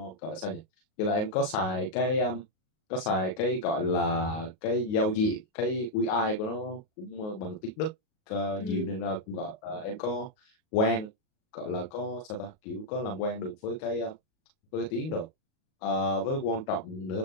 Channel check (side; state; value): right; late; 38 ms